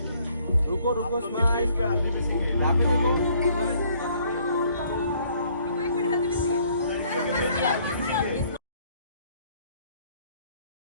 रुको रुको स्माइल पे हल्दी भी सीखे यहाँ पे देखो एक मिनट हल्दी भी सी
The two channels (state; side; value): inverted; both; correlation -0.63